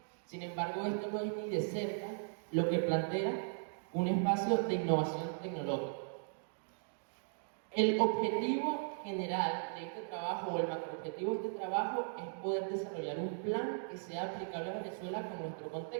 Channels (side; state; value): left; silent; digital silence